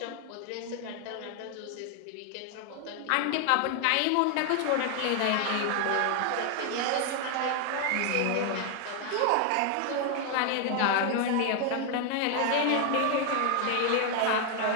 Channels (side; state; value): both; different; correlation 0.00